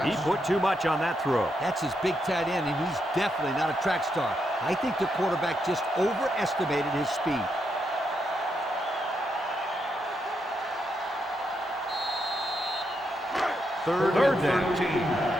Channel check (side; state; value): both; normal; correlation 0.81